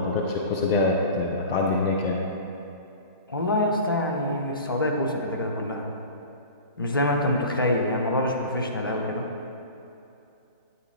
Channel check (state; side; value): inverted; both; correlation -0.36